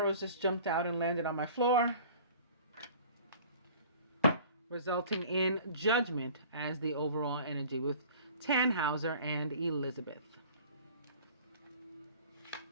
just jumped out and landed on my floor, resulting in Judgment as the overall energy with Tannhauser and Elizabeth.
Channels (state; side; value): inverted; both; correlation -0.46